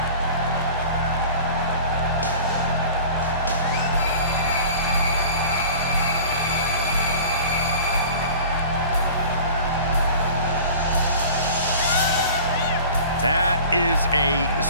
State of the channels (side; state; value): both; inverted; correlation -0.42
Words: That is a